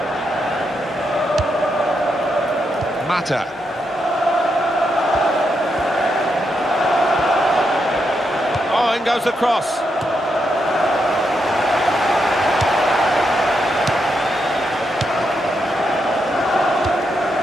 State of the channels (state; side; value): normal; both; correlation 0.82